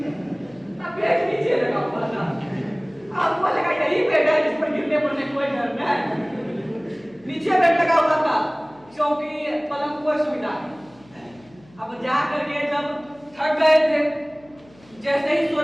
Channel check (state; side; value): noise; left; hum, 27 dB below the sound